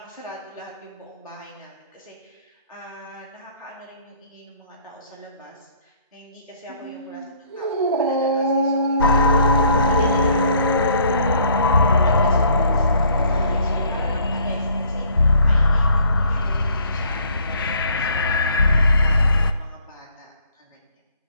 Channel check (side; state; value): both; inverted; correlation -0.60